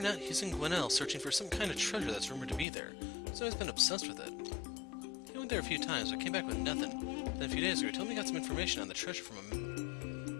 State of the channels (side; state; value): right; drops out; at 2.7 s